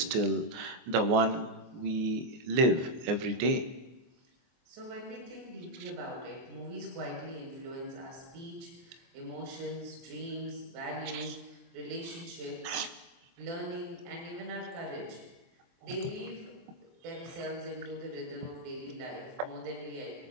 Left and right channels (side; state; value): left; late; 24 ms